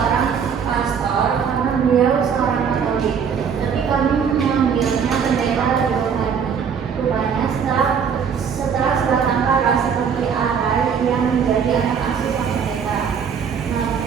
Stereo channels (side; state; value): left; quieter; 7.0 dB